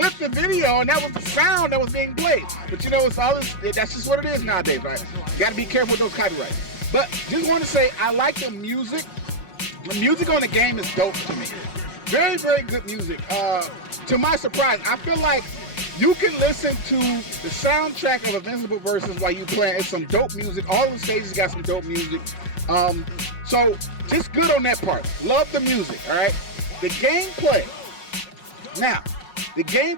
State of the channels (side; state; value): right; late; 5.5 ms